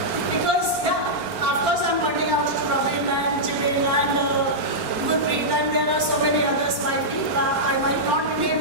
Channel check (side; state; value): left; late; 4.3 ms